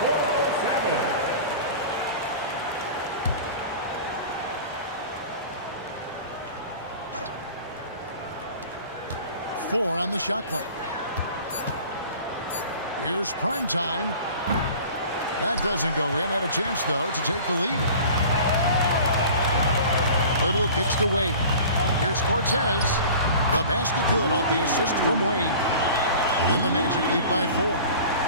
407. 4 on the shot clock. Here's prime time. That doesn't go in. Had a chance, though, to take the lead. Little kicks to Wade. Here's Cortez. The basket good off the assist from Wade. And the Magic lead by 4.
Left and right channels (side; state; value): both; inverted; correlation -0.41